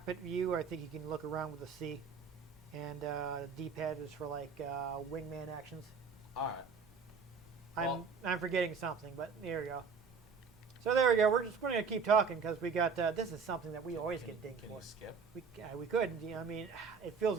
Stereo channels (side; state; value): left; quieter; 5.5 dB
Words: view, I think you can look around with a C. And D-pad is for like wingman actions. All right. I'm forgetting something, but there we go. So there we go. We're just going to keep talking because we got this is something that we always get dinged for. Can you skip? We could. You know, I mean, it